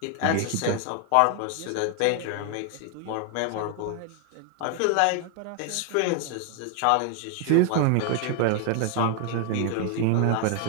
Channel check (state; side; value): different; both; correlation 0.00